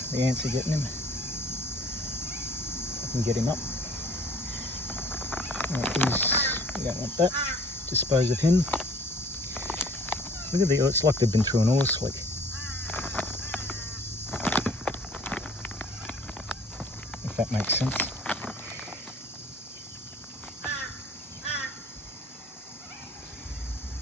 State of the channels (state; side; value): normal; both; correlation 0.53